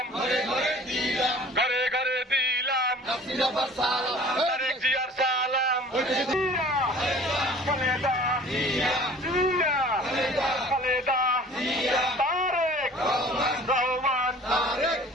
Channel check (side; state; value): both; normal; correlation 0.47